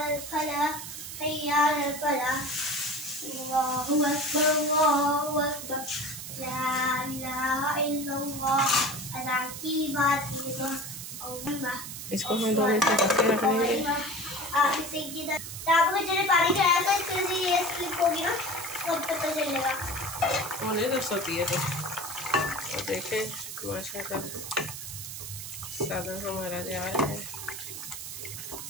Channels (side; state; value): right; noise; hiss, 9 dB below the sound